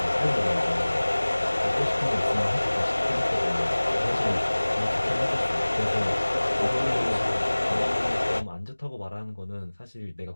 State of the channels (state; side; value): inverted; both; correlation -1.00